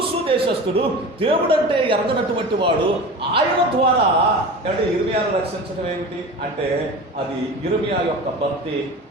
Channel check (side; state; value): both; normal; correlation 0.33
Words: దేశస్థుడు, దేవుడు అంటే ఎరగనటువంటి వాడు, ఆయన ద్వారా అంటే ఇర్మియాను రక్షించడం ఏమిటి అంటే అది ఇర్మియా యొక్క భక్తి,